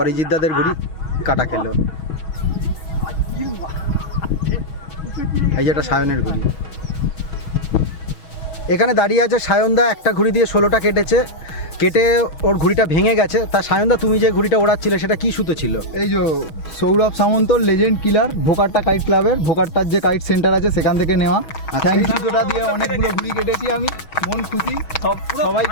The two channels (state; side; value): late; right; 6.3 ms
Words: অরিজিৎ দাদের ঘুড়ি কাটা খেলো। এই যে এটা সায়নের ঘুড়ি। এখানে দাঁড়িয়ে আছে সায়নদা, একটা ঘুড়ি দিয়ে 16টা কেটেছে। কেটে ওর ঘুড়িটা ভেঙে গেছে। তা সায়নদা, তুমি যে ঘুড়িটা ওড়াচ্ছিলে সেটা কি সুতো ছিল? এই যে সৌরভ সামন্ত লেজেন্ড কিলার, ভোকারটা কাইট ক্লাবের, ভোকারটার যে কাইট সেন্টার আছে সেখান থেকে নেওয়া। Thank you. সুতোটা দিয়ে অনেকগুলো ঘুড়ি কেটেছি আমি, মন খুশি,